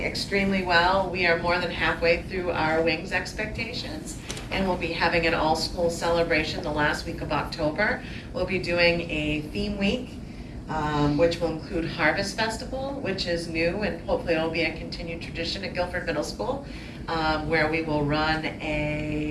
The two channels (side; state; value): both; identical; correlation 1.00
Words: extremely well. We are more than halfway through our wings expectations, and we'll be having an all-school celebration the last week of October. We'll be doing a theme week, which will include Harvest Festival, which is new, and hopefully it'll be a continued tradition at Gilford Middle School, where we will run